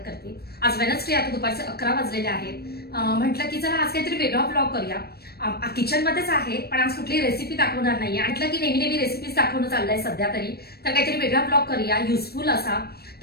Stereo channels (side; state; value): right; late; 0.46 ms